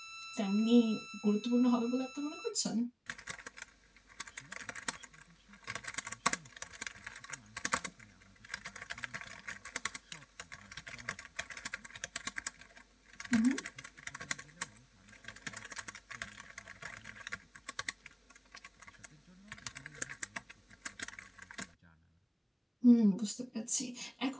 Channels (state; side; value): identical; both; correlation 1.00